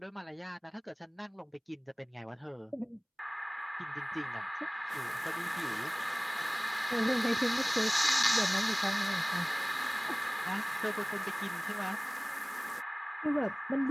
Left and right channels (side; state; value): both; identical; correlation 1.00